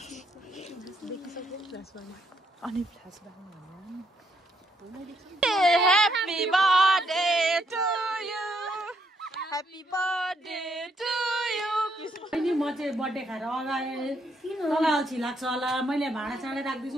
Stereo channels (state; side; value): normal; both; correlation 0.74